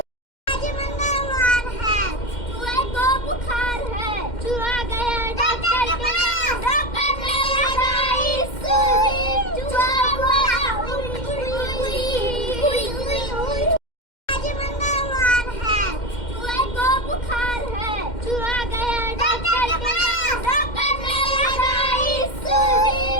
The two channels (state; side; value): late; right; 2.1 ms